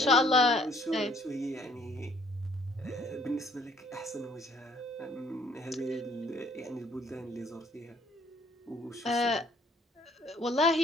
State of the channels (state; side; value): normal; both; correlation 0.61